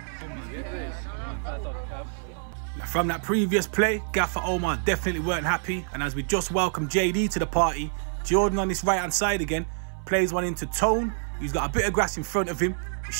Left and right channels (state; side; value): silent; left; 60 dB below the other